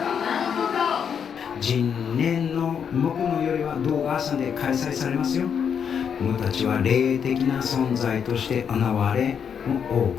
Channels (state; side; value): quieter; right; 7.4 dB